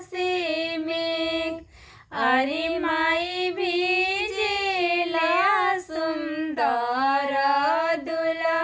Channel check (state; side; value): identical; both; correlation 1.00